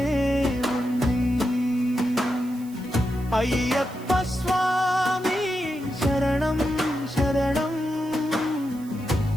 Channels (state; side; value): noise; right; hiss, 22 dB below the sound